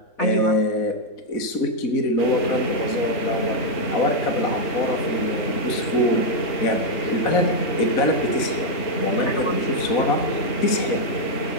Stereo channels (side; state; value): right; late; 4.0 ms